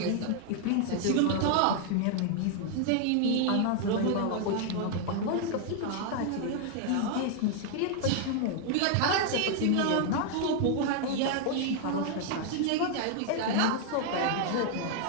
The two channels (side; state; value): both; different; correlation 0.00